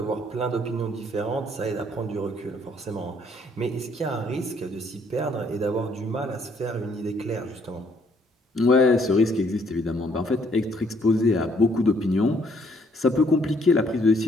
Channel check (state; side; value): normal; both; correlation 0.66